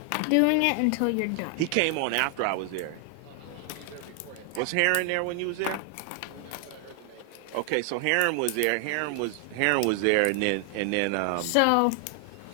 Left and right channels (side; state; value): both; different; correlation 0.00